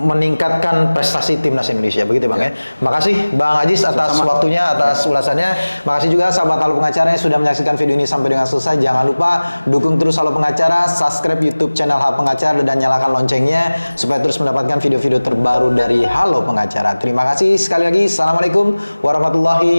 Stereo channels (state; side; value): inverted; both; correlation -1.00